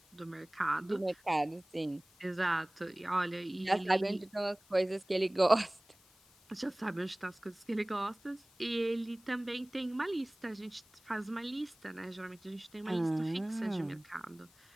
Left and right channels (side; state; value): left; noise; hiss, 28 dB below the sound